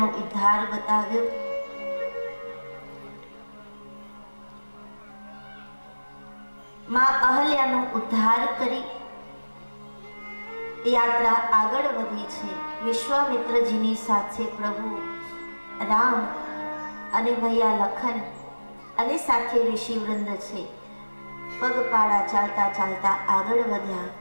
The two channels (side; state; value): both; inverted; correlation -1.00